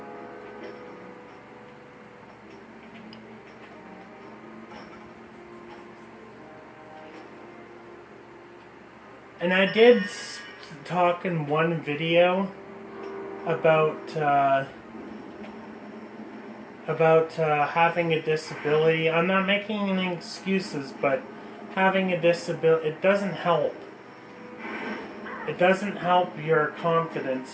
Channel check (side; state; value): both; identical; correlation 1.00